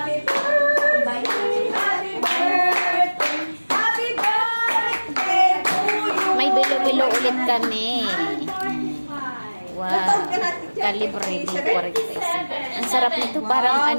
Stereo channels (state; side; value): inverted; both; correlation -1.00